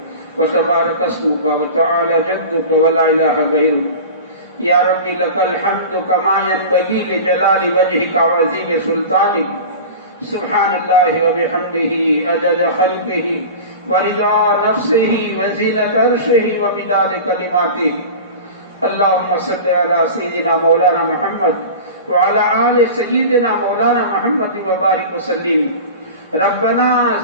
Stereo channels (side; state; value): both; inverted; correlation -0.33